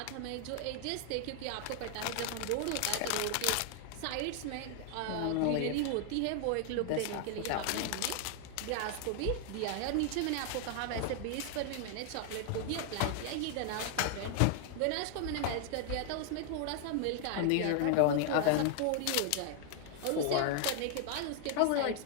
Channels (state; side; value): different; both; correlation 0.00